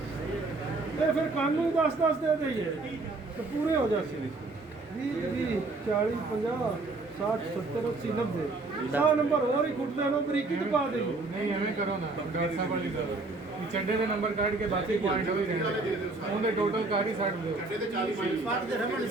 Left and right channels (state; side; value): quieter; left; 3.4 dB